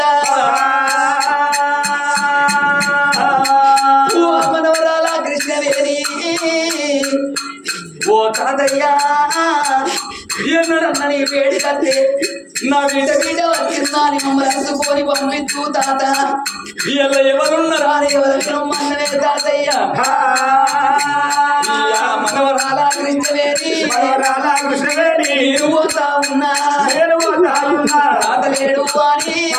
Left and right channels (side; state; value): both; identical; correlation 1.00